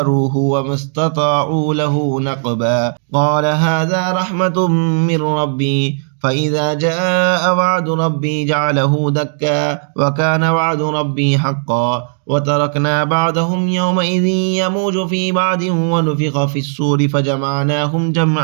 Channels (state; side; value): silent; left; digital silence